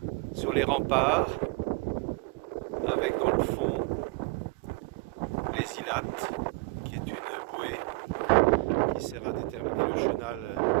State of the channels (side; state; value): left; quieter; 25.5 dB